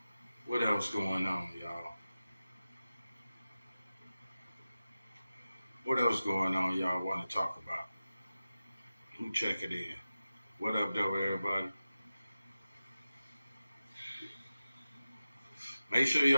What else going on, y'all? What else going on y'all want to talk about? Who check it in? What up, though, everybody? Make sure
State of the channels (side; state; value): both; inverted; correlation -0.95